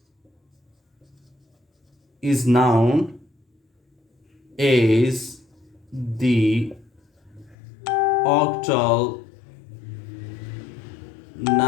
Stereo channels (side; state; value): right; drops out; at 7.6 s